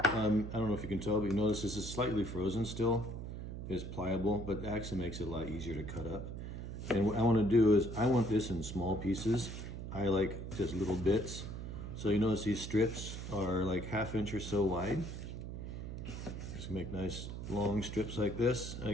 don't know if you can tell, but you notice this is slightly frozen still. It's pliable, but it actually makes it a lot easier to cut up. And what I want to do is, I want this in small pieces. I like just little bits. So you notice these strips are like 1/2 inch or so wide. Just make nice long strips like this.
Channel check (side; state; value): right; noise; hum, 7 dB below the sound